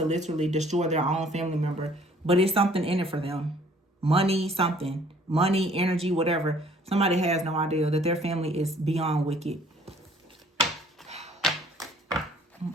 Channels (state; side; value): normal; both; correlation 0.58